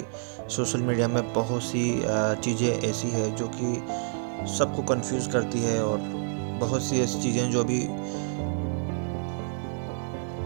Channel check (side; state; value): left; silent; digital silence